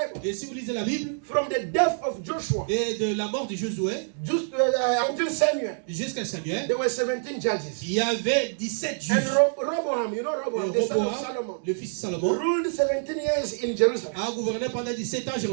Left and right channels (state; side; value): silent; left; digital silence